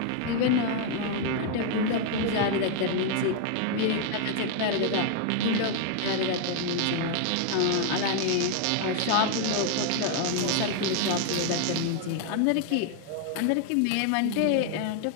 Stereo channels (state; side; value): different; both; correlation 0.00